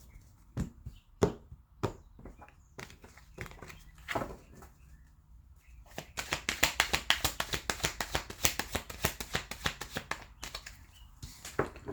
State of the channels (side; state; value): both; identical; correlation 1.00